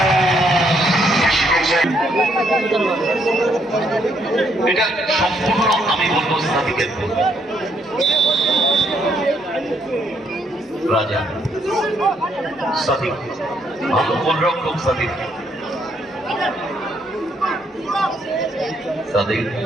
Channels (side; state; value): both; normal; correlation 0.72